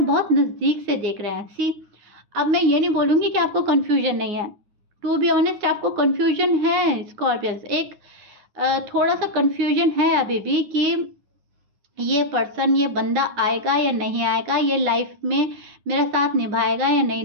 बहुत नज़दीक से देख रहे हैं। सी, अब मैं ये नहीं बोलूँगी कि आपको कन्फ्यूजन नहीं है। टू बी ऑनेस्ट, आपको कन्फ्यूजन है स्कॉर्पियंस, एक थोड़ा सा कन्फ्यूजन है अभी भी कि ये पर्सन, ये बंदा आएगा या नहीं आएगा, ये लाइफ में मेरा साथ निभाएगा या नहीं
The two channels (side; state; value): left; late; 9.6 ms